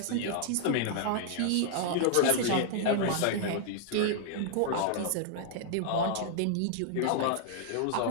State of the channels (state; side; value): different; both; correlation -0.01